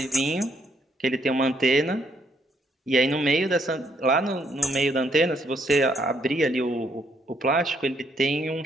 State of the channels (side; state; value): both; normal; correlation 0.71